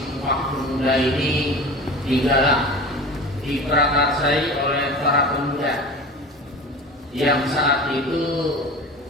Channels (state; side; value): normal; both; correlation 0.35